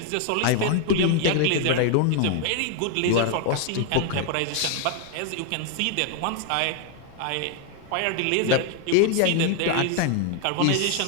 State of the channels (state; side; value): different; both; correlation 0.00